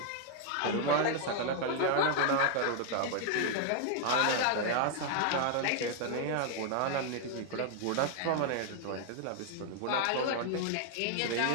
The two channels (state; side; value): different; both; correlation 0.00